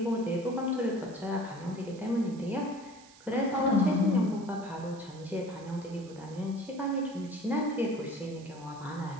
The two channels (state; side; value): noise; right; hiss, 23 dB below the sound